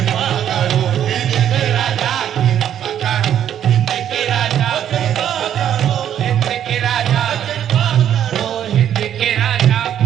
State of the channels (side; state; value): left; quieter; 10.1 dB